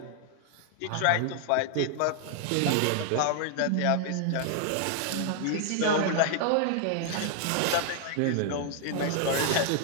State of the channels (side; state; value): both; different; correlation 0.00